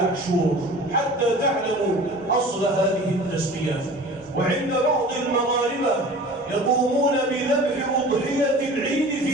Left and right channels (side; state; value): both; normal; correlation 0.41